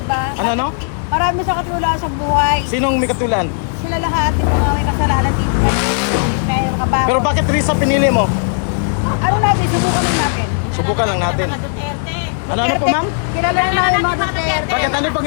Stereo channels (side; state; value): right; silent; digital silence